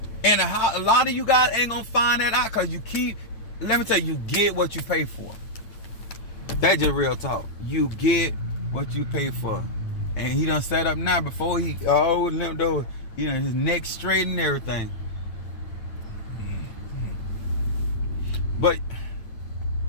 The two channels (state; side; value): late; right; 9.0 ms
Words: And a lot of you guys ain't gonna find that out because let me tell you, you get what you pay for. That's just real talk. You get what you pay for. And he done set up now before he limped over, his neck straight and everything. But